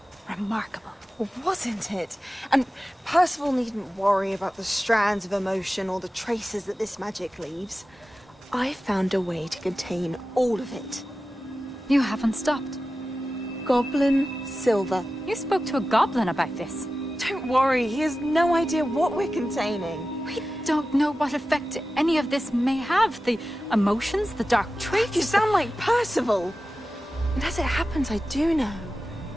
remarkable. Wasn't it? And Percival needn't worry about the strands of emotion or the traces that this magic leaves. I found a way to contain all of it. You haven't stopped. Goblin Silver. You spoke to a goblin about this. Don't worry, he has no idea what we're containing. We don't know what effect any of this may have. The emotions, the dark traits. You sound like Percival. And as it happens, I do know.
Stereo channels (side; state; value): both; normal; correlation 0.94